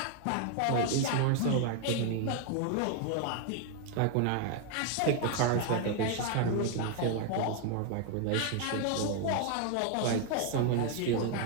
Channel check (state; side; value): different; both; correlation 0.00